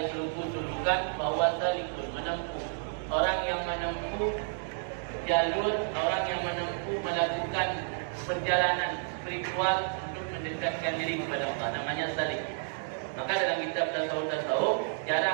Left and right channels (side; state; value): left; silent; digital silence